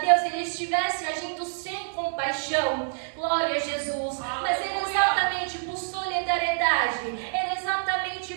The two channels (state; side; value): silent; left; digital silence